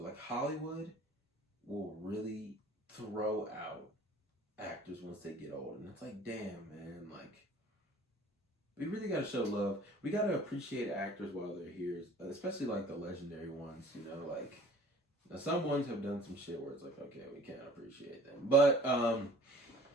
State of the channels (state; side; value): normal; both; correlation 0.49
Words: like Hollywood will really throw out actors once they get old, and it's like, damn, man, like. We really gotta show love. We gotta appreciate actors while they're here, especially like the legendary ones. You know, like now some ones have done some shit where it's like, okay, we can't appreciate them, but